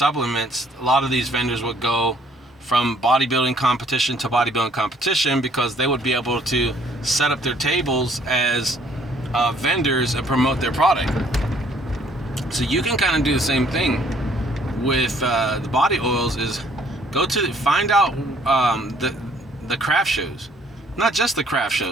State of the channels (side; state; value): both; normal; correlation 0.62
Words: a lot of these vendors would go from bodybuilding competition to bodybuilding competition, because they would be able to set up their tables as vendors and promote their product. So you can kind of do the same thing with the body oils, is find out the craft shows. Not just the craft